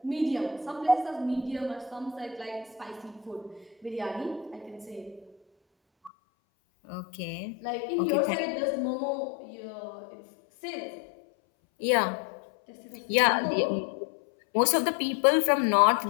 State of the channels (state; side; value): drops out; right; at 6.1 s